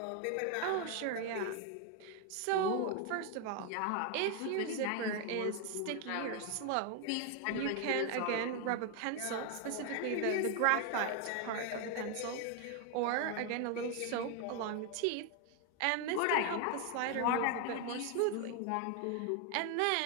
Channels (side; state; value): both; different; correlation 0.01